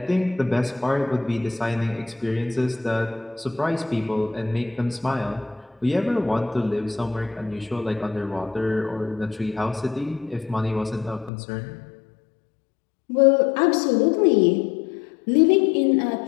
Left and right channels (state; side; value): drops out; right; at 11.3 s